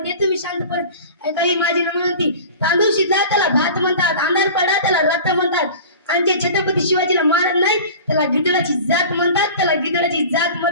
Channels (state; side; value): inverted; both; correlation -0.38